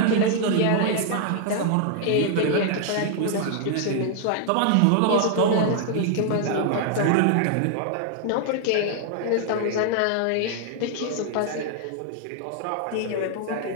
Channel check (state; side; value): different; both; correlation 0.00